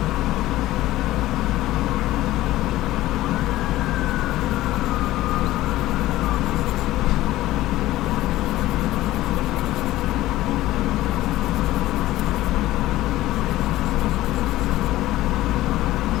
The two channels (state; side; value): quieter; right; 16.0 dB